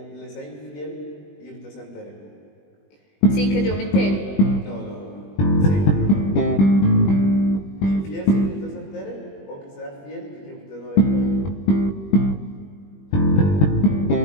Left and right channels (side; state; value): right; late; 21 ms